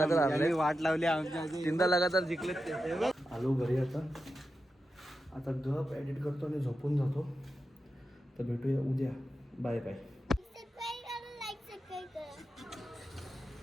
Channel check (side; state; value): both; normal; correlation 0.90